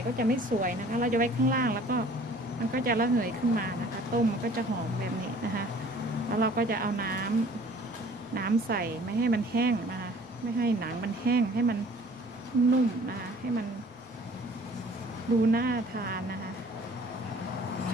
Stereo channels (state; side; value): normal; both; correlation 0.52